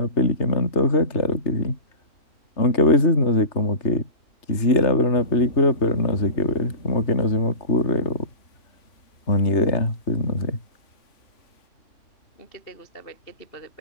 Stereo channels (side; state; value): right; late; 3.3 ms